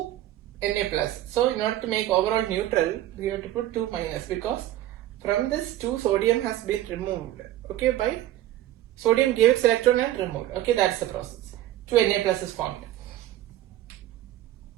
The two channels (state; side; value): quieter; left; 14.0 dB